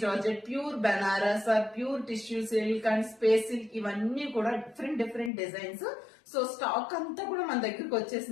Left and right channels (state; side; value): drops out; right; at 5.3 s